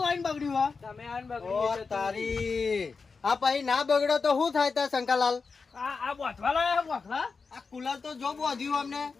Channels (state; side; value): quieter; right; 4.7 dB